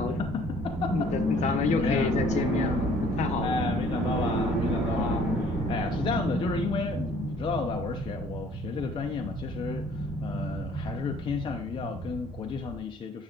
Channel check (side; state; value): both; normal; correlation 0.57